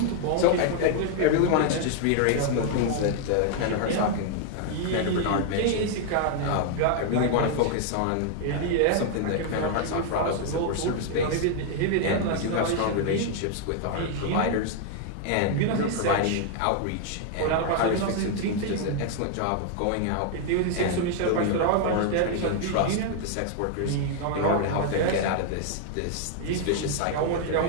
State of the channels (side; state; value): both; different; correlation 0.00